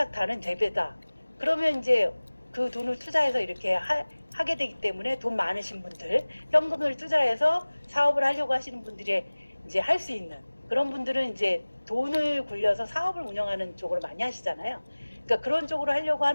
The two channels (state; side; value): inverted; both; correlation -1.00